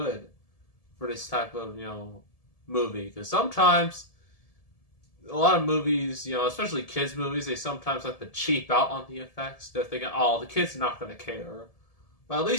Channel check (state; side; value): late; right; 1.7 ms